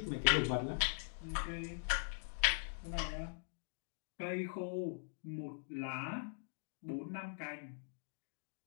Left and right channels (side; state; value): right; silent; digital silence